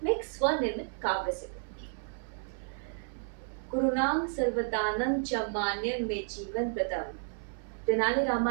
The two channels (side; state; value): left; silent; 57 dB below the other